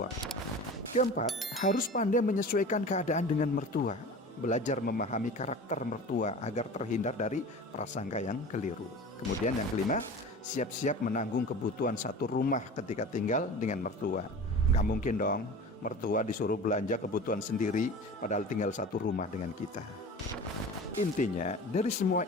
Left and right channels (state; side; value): normal; both; correlation 0.37